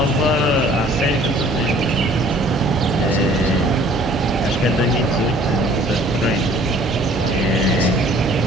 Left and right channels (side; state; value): both; normal; correlation 0.54